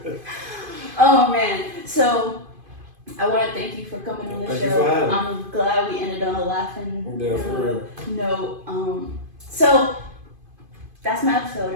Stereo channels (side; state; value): left; late; 2.5 ms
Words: Oh, man. So, I want to thank you for coming on the Thank show. You for having me. I'm glad we ended on a laughing note. So, that's my episode.